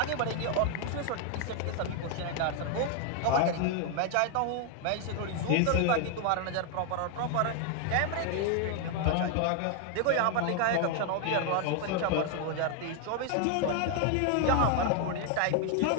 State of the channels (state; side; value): different; both; correlation 0.00